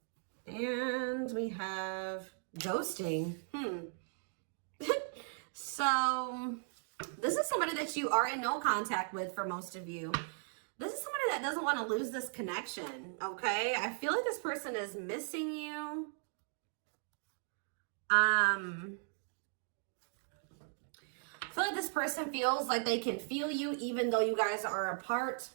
And we have ghosting. So this is somebody that you are in no contact with for most of you. This is somebody that doesn't want to lose this connection, okay? I feel like this person is missing you. I feel like this person feels like they can feel you even though you guys are apart,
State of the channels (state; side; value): silent; left; 53 dB below the other